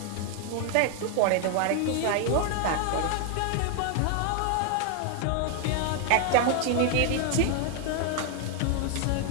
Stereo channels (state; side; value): different; both; correlation 0.00